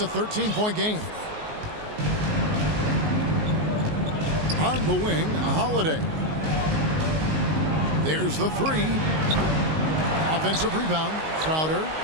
13-point game. On the wing, Holiday. There's the three. Offensive rebound. Crowder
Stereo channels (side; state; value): left; late; 19 ms